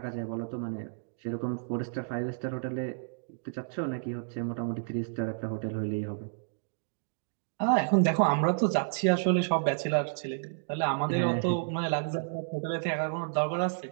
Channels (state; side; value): silent; left; digital silence